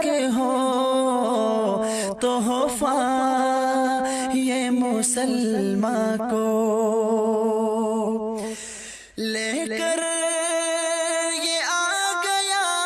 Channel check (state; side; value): identical; both; correlation 1.00